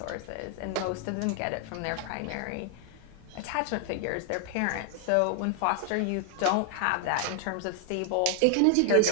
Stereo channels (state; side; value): different; both; correlation 0.00